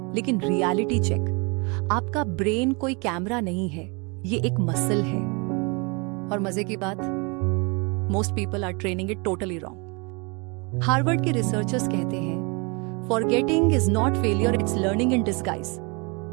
लेकिन रियलिटी चेक, आपका ब्रेन कोई कैमरा नहीं है, ये एक मसल है। और मजे की बात, most people are training it totally wrong. Harvard के रिसर्चर्स कहते हैं, forgetting is not failure, it's learning in disguise.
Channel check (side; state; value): left; quieter; 30.6 dB